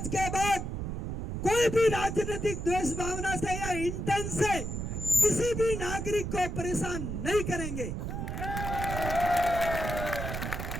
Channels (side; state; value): right; noise; rumble, 4 dB below the sound